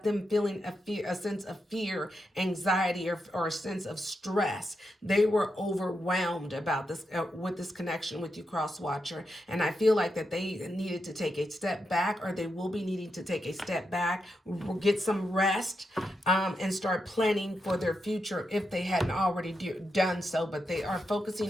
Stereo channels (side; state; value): both; normal; correlation 0.85